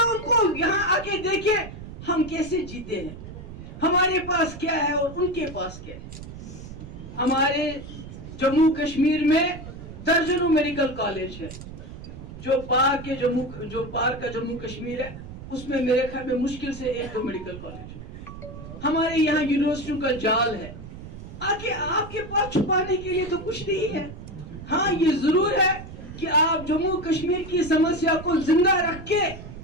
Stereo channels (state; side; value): noise; right; rumble, 12 dB below the sound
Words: ان کو، یہاں آ کے دیکھیں ہم کیسے جیتے ہیں، ہمارے پاس کیا ہے اور ان کے پاس کیا ہے۔ ہمارے جموں کشمیر میں درجنوں میڈیکل کالج ہے، جو پار کا جموں کشمیر ہے اس میں میرے خیال میں مشکل سے 1-2 میڈیکل کالج ہے۔ ہمارے یہاں یونیورسٹیوں کا جال ہے، آگے آپ کے پاس چھپانے کے لیے تو کچھ نہیں ہے۔ ہاں یہ ضرور ہے کہ آپ جموں کشمیر کی سمسیا کو زندہ رکھ کے